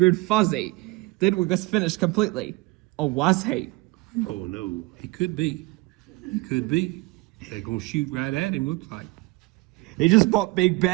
fuzzy. Thidwick was finished completely. Or was he? Oh no, he could be. They're gonna shoot right at him, looks like. He just bought Big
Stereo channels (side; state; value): left; quieter; 22.2 dB